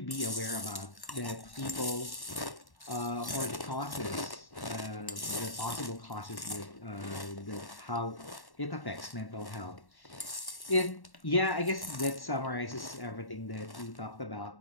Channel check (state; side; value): late; right; 1.1 ms